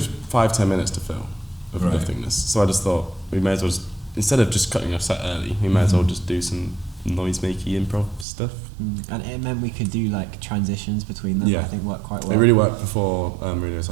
minutes to fill of Right. nothingness. So I just thought we may as well just, instead of just cutting our set early, we may as well just do some noise-makey improv stuff. And it meant we could do like transitions between them, Yeah. I think worked quite well. It really worked before Radio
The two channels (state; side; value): drops out; left; at 8.2 s